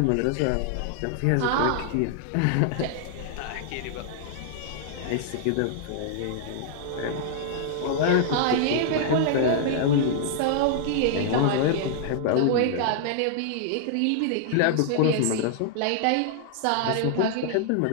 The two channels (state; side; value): different; both; correlation -0.01